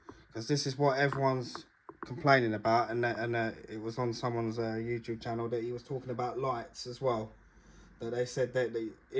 because this is what everyone's complaining about, and it was on someone's YouTube channel that he was talking about lights as well. That they said that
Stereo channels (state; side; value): identical; both; correlation 1.00